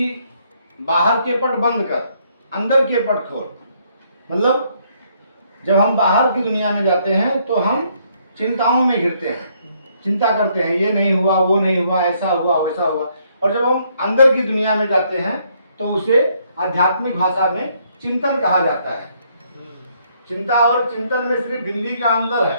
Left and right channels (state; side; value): inverted; both; correlation -0.70